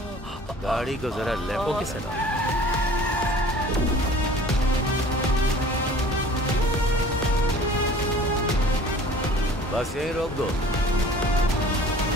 गाड़ी को जरा लेफ्ट। Okay sir. बस यहीं रोक दो।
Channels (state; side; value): normal; both; correlation 0.47